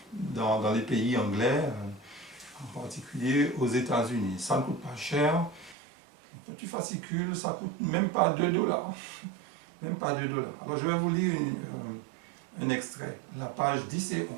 dans les pays anglais, en particulier aux États-Unis. Ça ne coûte pas cher. Un petit fascicule, ça ne coûte même pas 2 dollars. Même pas 2 dollars. Alors je vais vous lire un extrait, la page 10 et 11.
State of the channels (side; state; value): left; drops out; at 5.8 s